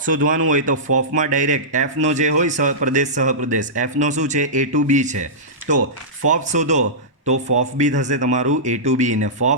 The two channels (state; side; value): normal; both; correlation -0.16